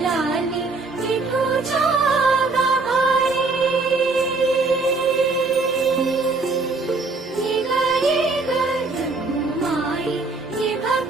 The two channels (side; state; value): left; quieter; 3.7 dB